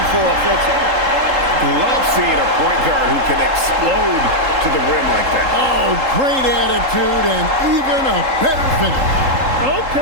for offensively. Love seeing a point guard who can explode to the rim like that. Oh, great attitude and even a better finish.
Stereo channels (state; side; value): late; left; 3.8 ms